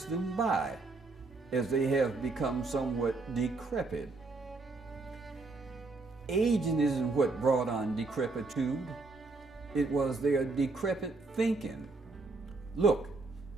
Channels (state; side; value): quieter; left; 3.6 dB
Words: them by, as they have become somewhat decrepit. Aging isn't what brought on decrepitude. It was their decrepit thinking. Look,